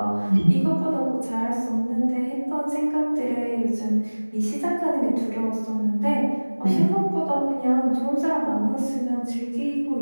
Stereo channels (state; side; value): inverted; both; correlation -1.00